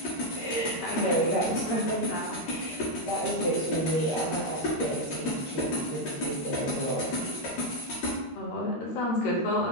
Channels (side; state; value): right; late; 13 ms